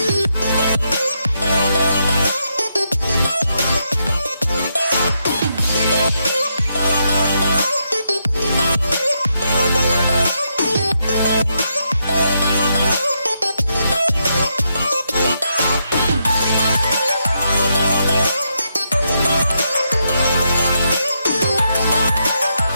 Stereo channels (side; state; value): both; inverted; correlation -0.80